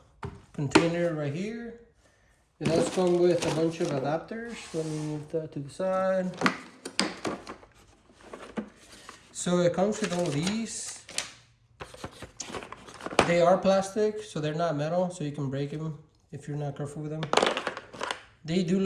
container right here. It does come with a bunch of adapters. Let me move that to the side. So it comes with all of these. They are plastic, so they're not metal, so you can break them if you're not careful with them. They do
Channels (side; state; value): both; identical; correlation 1.00